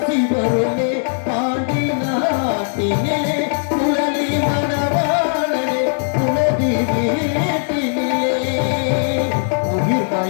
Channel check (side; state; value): right; silent; digital silence